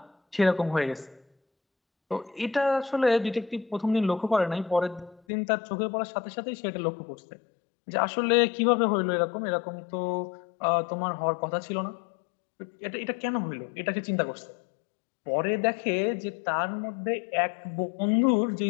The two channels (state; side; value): drops out; right; at 5.2 s